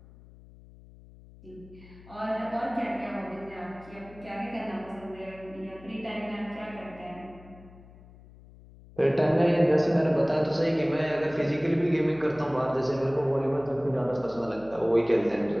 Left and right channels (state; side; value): noise; left; hum, 22 dB below the sound